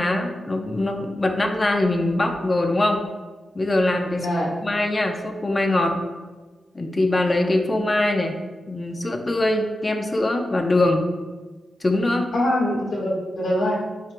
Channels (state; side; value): normal; both; correlation 0.91